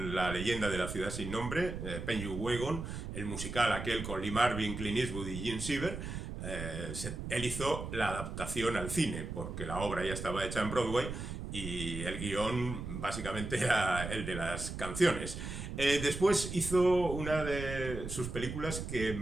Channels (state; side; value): noise; right; rumble, 6 dB below the sound